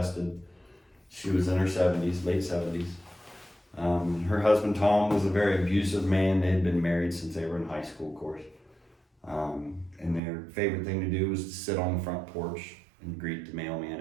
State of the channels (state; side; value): drops out; left; at 10.2 s